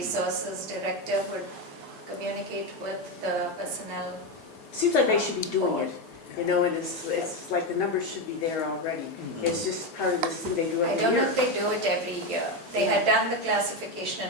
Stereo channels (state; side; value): normal; both; correlation 0.12